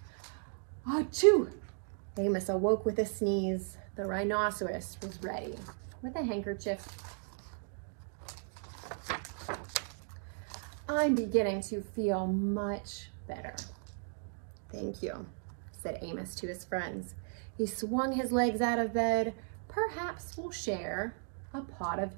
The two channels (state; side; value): silent; left; 54 dB below the other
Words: Achoo! Amos awoke with a sneeze. The rhinoceros was ready with a handkerchief. "I'm beginning to feel much better." "Thank you," said Amos to his friends. He swung his legs out of bed. "Perhaps we'll share a pot of